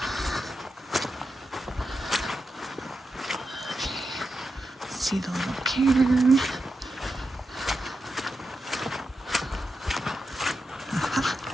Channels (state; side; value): normal; both; correlation 0.88